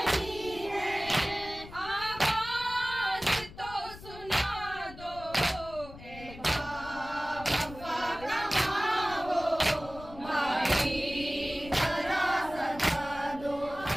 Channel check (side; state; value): left; noise; rumble, 16 dB below the sound